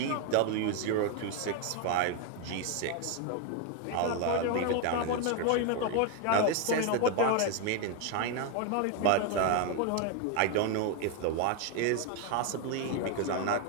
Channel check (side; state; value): both; different; correlation 0.01